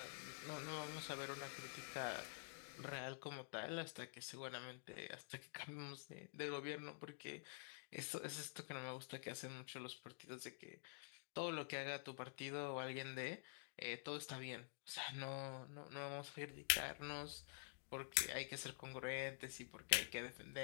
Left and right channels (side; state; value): right; silent; digital silence